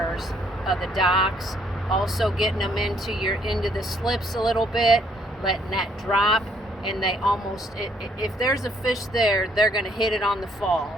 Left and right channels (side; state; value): both; normal; correlation 0.67